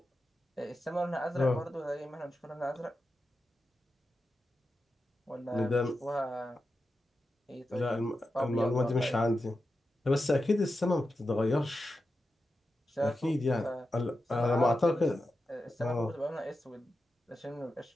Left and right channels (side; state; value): both; normal; correlation 0.90